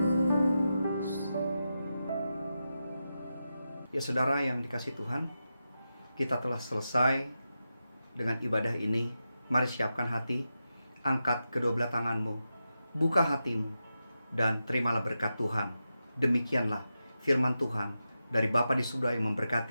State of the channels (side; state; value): both; inverted; correlation -0.90